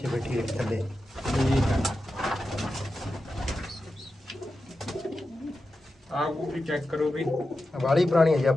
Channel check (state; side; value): normal; both; correlation 0.91